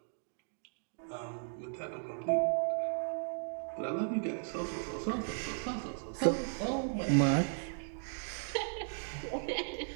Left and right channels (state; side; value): silent; left; digital silence